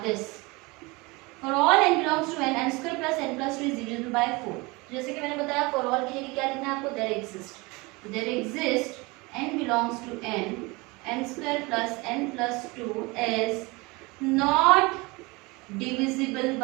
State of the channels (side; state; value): left; quieter; 25.0 dB